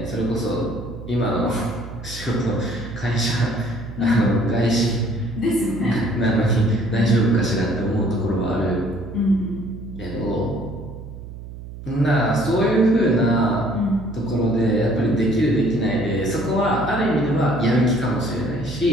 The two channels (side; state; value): right; noise; hum, 13 dB below the sound